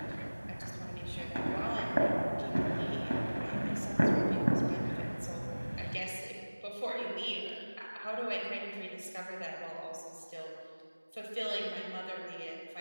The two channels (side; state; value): both; inverted; correlation -1.00